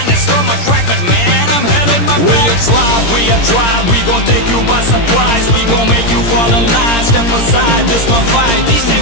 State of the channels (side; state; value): right; late; 17 ms